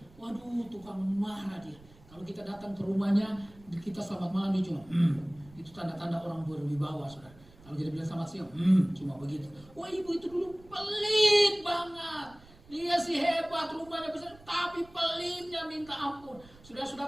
waduh tukang marah dia. Kalau kita datang ke rumahnya, kita selamat malam dia cuma, itu tanda-tanda orang berwibawa saudara. Kalau kita bilang selamat siang, cuma begitu. Wah ibu itu dulu pelit banget. Dia sih hebat, rumahnya besar, tapi pelitnya minta ampun.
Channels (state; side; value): noise; right; rumble, 24 dB below the sound